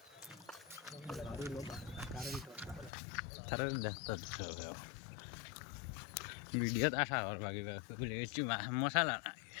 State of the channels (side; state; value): right; drops out; at 2.9 s